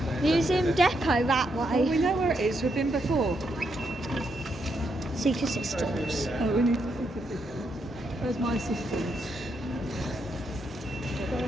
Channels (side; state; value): both; normal; correlation 0.79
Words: Museum Depot that Oh, way. we know where it is. We've been before. Seek assistance. Oh, we need to think of it. Where's my assistance?